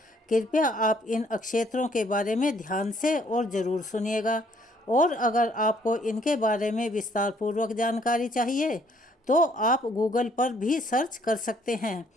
कृपया आप इन अक्षेत्रों के बारे में ध्यान से और ज़रूर सुनिएगा। और अगर आपको इनके बारे में विस्तार पूर्वक जानकारी चाहिए तो आप गूगल पर भी सर्च कर सकते हैं।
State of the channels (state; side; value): normal; both; correlation 0.64